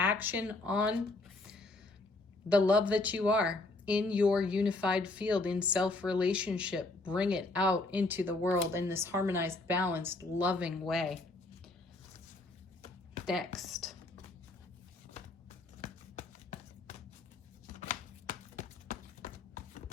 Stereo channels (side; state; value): right; quieter; 3.0 dB